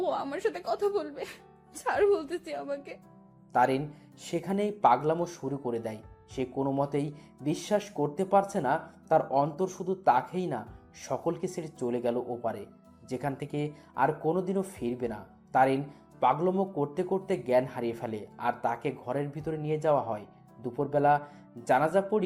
ও আমার সাথে কথা বলবে। ছাড় বলতেছি আমাকে। তারিন সেখানেই পাগলামো শুরু করে দেয়। সে কোনো মতেই বিশ্বাস করতে পারছে না তার অন্তর শুধু তাকেই না, সকলকে ছেড়ে চলে গেল ওপারে, যেখান থেকে আর কোনোদিনও ফিরবে না। তারিন পাগলামো করতে করতে জ্ঞান হারিয়ে ফেলে, আর তাকে ঘরের ভিতরে নিয়ে যাওয়া হয়। দুপুরবেলা জানাজা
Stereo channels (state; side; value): identical; both; correlation 1.00